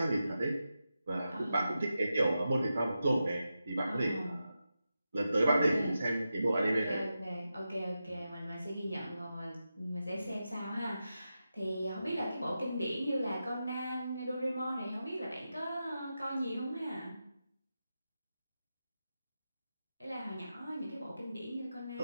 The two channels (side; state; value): both; inverted; correlation -0.90